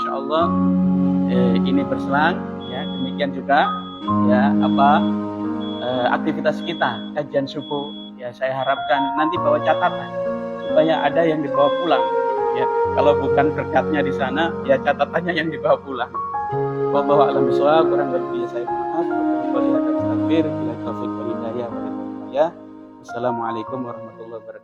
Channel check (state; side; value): identical; both; correlation 1.00